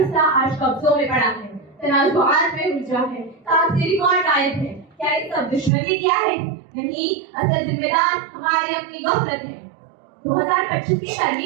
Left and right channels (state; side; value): drops out; left; at 5.7 s